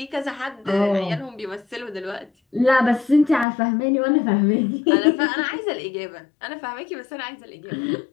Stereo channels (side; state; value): right; drops out; at 3.5 s